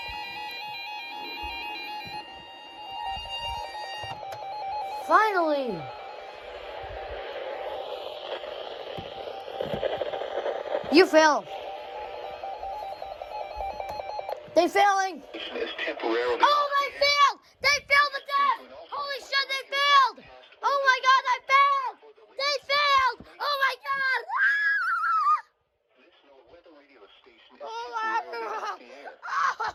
Finally! You failed. They failing. Oh, they failed! They failed the test! Holy shit, they failed! Oh my god, they failed! They failed! Oh my god! Oh my god!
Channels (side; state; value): both; identical; correlation 1.00